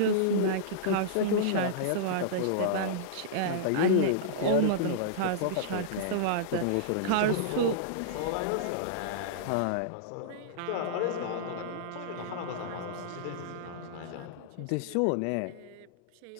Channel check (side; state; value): both; different; correlation -0.03